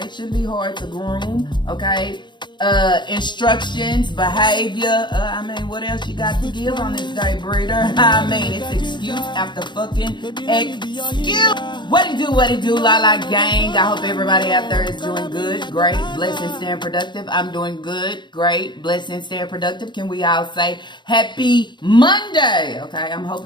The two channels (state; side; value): late; right; 0.22 ms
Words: it shouldn't be hard to groom. Okay, instructions, behavior. I mean, what else you got to give on this day, breeder? I mean, it's excuse after fucking excuse. What it do, La La gang. I hope everybody out there is doing good, great, blessed, and staying productive. I'm doing good, great, blessed, and staying productive. Can we all say happy Monday? Okay, I'm